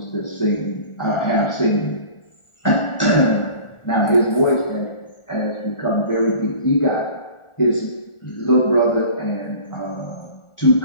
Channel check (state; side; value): late; right; 1.4 ms